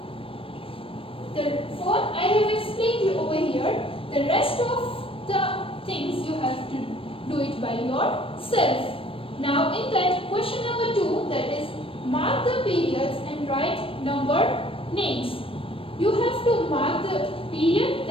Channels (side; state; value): right; late; 0.26 ms